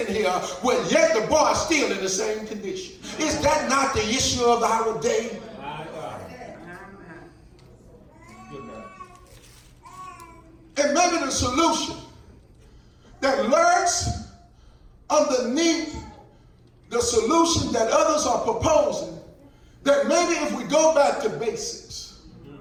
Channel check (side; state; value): both; identical; correlation 1.00